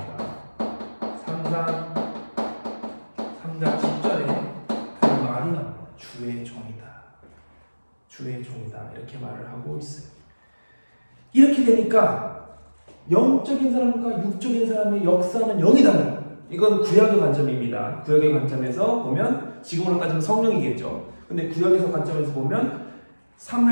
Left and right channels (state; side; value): inverted; both; correlation -1.00